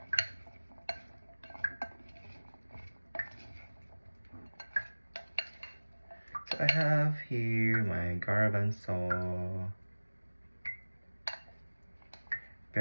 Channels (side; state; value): both; inverted; correlation -1.00